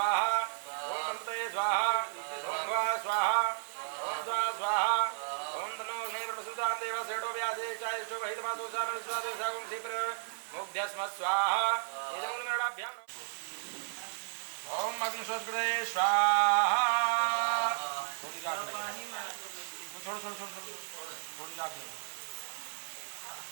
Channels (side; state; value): left; silent; 55 dB below the other